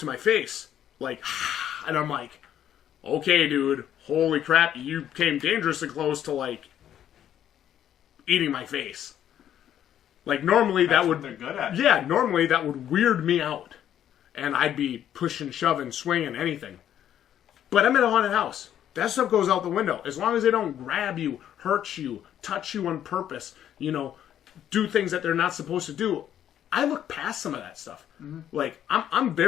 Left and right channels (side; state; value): right; quieter; 10.5 dB